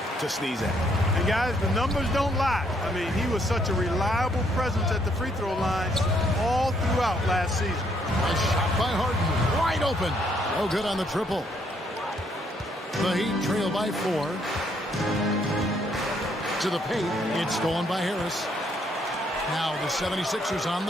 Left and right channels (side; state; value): both; normal; correlation 0.70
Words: to sneeze at. And guys, the numbers don't lie. I mean, he was such a reliable presence at the free throw line all throughout last season. A shot by Harden, wide open. No good on the triple. The Heat trail by 4. To the paint, it's stolen by Harris. Now the 76ers on